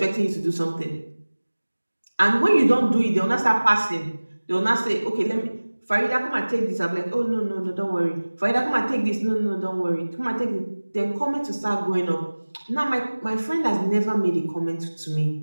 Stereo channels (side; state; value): both; inverted; correlation -1.00